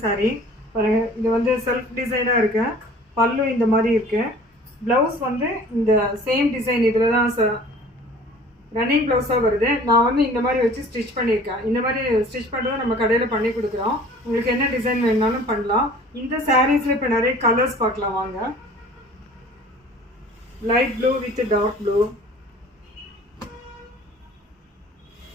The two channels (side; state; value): both; normal; correlation 0.48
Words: பாருங்க. இது வந்து செல்ஃப் டிசைனாக இருக்கு. பல்லு இந்த மாதிரி இருக்கு. ப்ளவுஸ் வந்து இந்த சேம் டிசைன் இதில் தான் ரன்னிங் ப்ளவுஸாக வருது. நான் வந்து இந்த மாதிரி வச்சு ஸ்டிச் பண்ணியிருக்கேன். இந்த மாதிரி ஸ்டிச் பண்ணுறது நம்ம கடையில் பண்ணி கொடுக்குறோம். உங்களுக்கு என்ன டிசைன் வேணுனாலும் பண்ணலாம். இந்த சாரீஸில் இப்போ நிறைய கலர்ஸ் பார்க்கலாம் வாங்க. Light blue with dark blue,